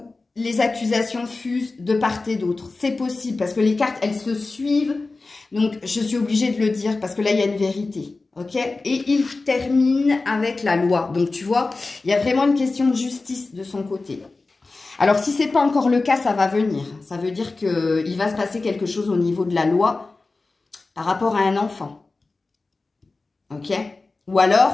les accusations fusent de part et d'autre. C'est possible parce que les cartes, elles se suivent. Donc, je suis obligée de le dire parce que là, il y a une vérité. Ok? Et il termine avec la loi. Donc, tu vois, il y a vraiment une question de justice de son côté. Alors, si ce n'est pas encore le cas, ça va venir. Ça veut dire qu'il va se passer quelque chose au niveau de la loi par rapport à un enfant. Ok? Ou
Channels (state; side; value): quieter; right; 3.6 dB